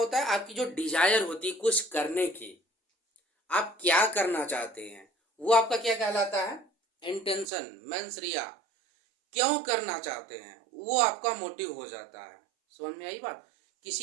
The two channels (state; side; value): drops out; left; at 7.5 s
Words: है, आपकी जो डिजायर होती है कुछ करने की, आप क्या करना चाहते हैं, वो आपका क्या कहलाता है? इंटेंशन। मेंसरिया, क्यों करना चाहते हैं वो आपका मोटिव हो जाता है। समझ में आई बात?